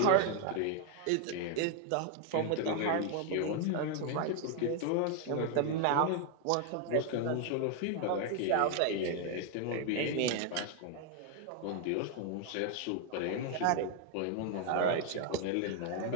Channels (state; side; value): different; both; correlation 0.01